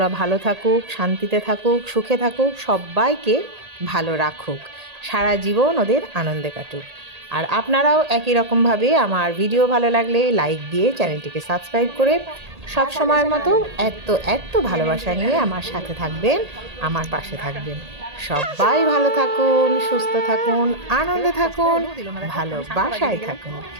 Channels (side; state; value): left; late; 1.8 ms